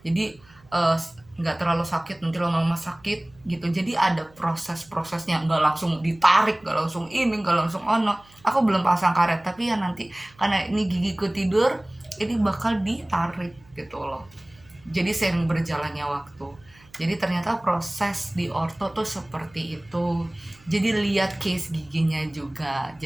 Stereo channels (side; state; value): right; noise; hum, 28 dB below the sound